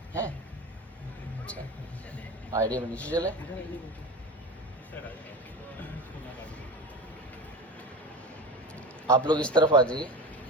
हैं. अच्छा, आइडिया में नीचे चले. आप लोग इस तरफ आ जाइए,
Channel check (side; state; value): both; normal; correlation 0.27